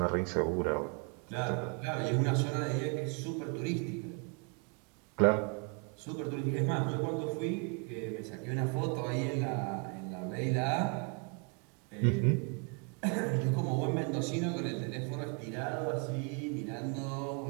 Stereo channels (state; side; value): quieter; left; 35.1 dB